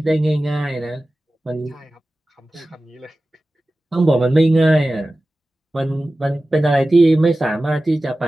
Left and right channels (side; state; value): both; normal; correlation 0.96